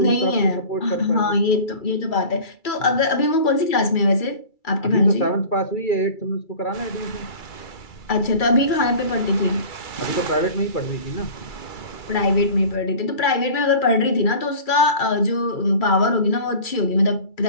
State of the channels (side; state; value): right; late; 2.3 ms